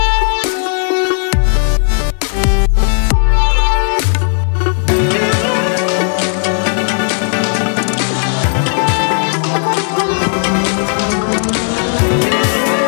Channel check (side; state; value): right; silent; 62 dB below the other